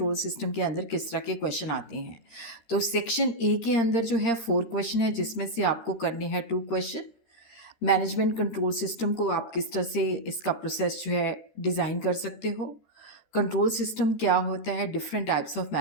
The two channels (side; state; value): right; late; 13 ms